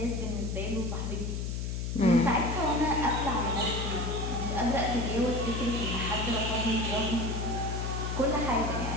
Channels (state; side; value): noise; left; hum, 2 dB below the sound